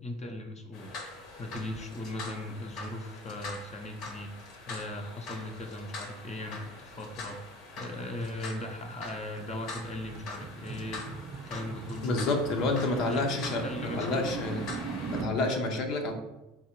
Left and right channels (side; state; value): both; normal; correlation 0.39